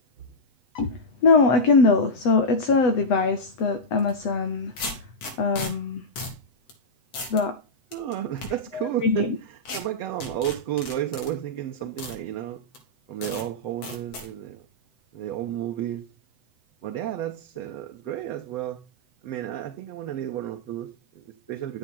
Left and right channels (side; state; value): right; late; 7.9 ms